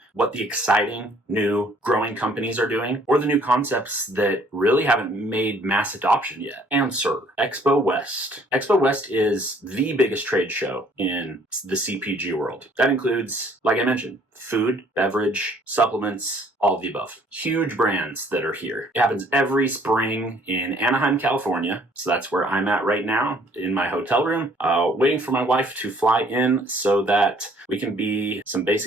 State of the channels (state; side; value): normal; both; correlation 0.60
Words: what the exciting, new, growing companies are doing, or the new concepts that really haven't made mass adoption yet? Answer: Expo West. Expo West is the biggest trade show in the CPG world. That includes, like I mentioned, food, beverage, supplements, all of the above. Huge brands that are here. It happens every spring in Anaheim, California. So that's where I'm at right now in my hotel room, waiting for my wife to fly in so that we can be some